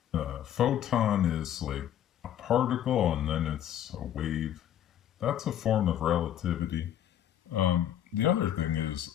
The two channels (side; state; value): right; quieter; 10.8 dB